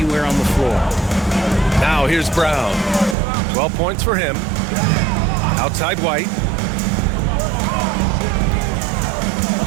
on the floor. Now here's Brown. 12 points for him. Outside White.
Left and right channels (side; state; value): left; drops out; at 3.2 s